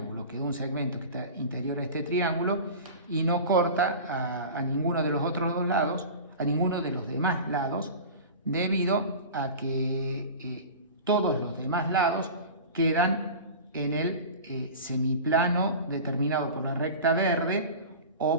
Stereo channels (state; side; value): inverted; both; correlation -0.34